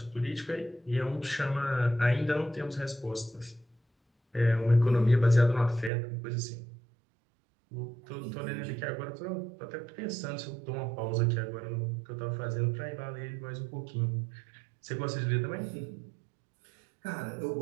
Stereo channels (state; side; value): drops out; left; at 5.9 s